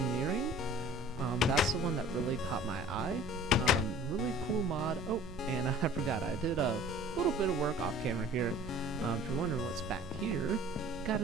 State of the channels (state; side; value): noise; right; rumble, 15 dB below the sound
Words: That's the one that really caught my eye. Really cool mod. Oh, and I forgot, I did a little bit of work off camera here. If you're wondering what's back here, got